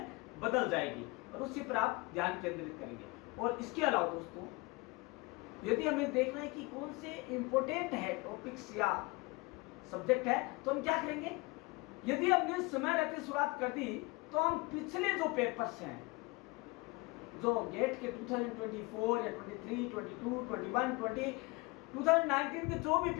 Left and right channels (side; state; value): right; quieter; 25.3 dB